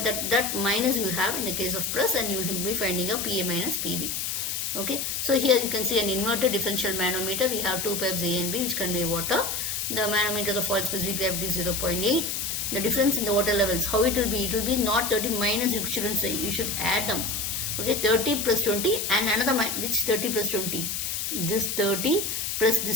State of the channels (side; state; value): left; noise; hiss, 2 dB below the sound